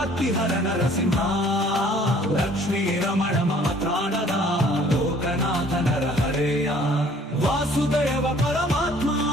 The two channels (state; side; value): normal; both; correlation 0.56